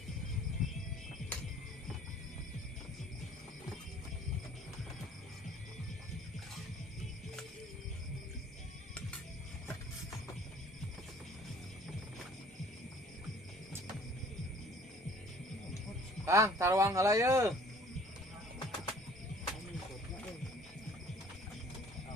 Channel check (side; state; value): both; normal; correlation 0.53